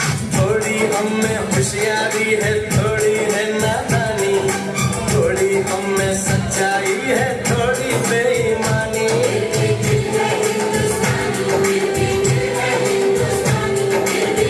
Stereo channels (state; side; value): identical; both; correlation 1.00